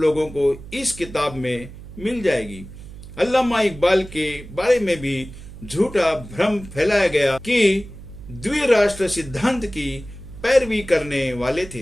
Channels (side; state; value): right; noise; hum, 15 dB below the sound